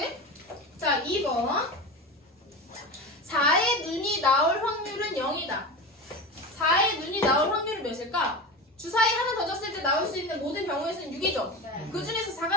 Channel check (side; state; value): both; normal; correlation 0.26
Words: 자, 2번. 4의 눈이 나올 확률은 0이다. 4의 눈이 나올 확률은 몇일까? 주사위 하나 던졌을 때 나올 수 있는 모든 경우의 수는 6이죠. 네. 그 중에서